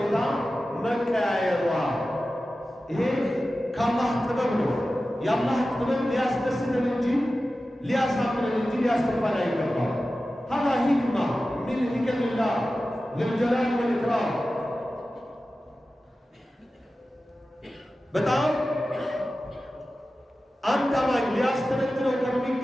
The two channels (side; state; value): both; normal; correlation 0.94